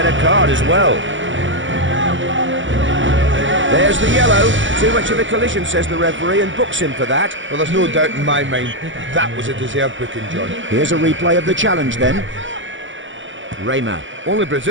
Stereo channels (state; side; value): late; left; 0.56 ms